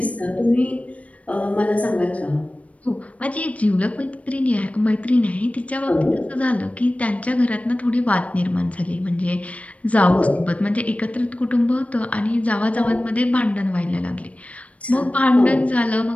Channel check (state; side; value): late; right; 0.066 ms